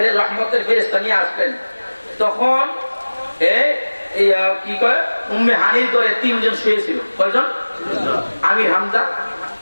রহমতের ফেরেশতা নিয়ে আসলেন, তখন কি কয় উম্মে হানির করে 3 জন শুয়েছিল। কয়জন? আমির হামজা,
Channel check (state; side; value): inverted; both; correlation -1.00